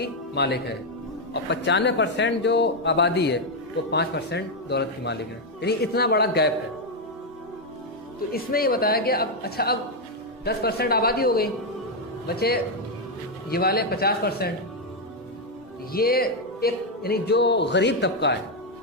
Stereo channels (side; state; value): both; normal; correlation 0.02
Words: مالک ہے اور 95% جو آبادی ہے وہ 5% دولت کی مالک ہے. یعنی اتنا بڑا گیپ ہے. تو اس میں یہ بتایا کہ اب 10% آبادی ہو گئی, بچے یہ والے 50%. یہ ایک یعنی جو غریب طبقہ ہے,